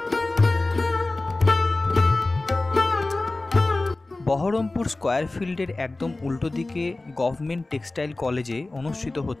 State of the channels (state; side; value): quieter; right; 3.0 dB